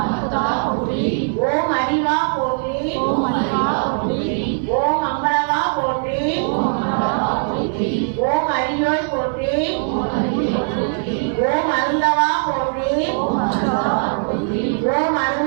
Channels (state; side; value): silent; left; digital silence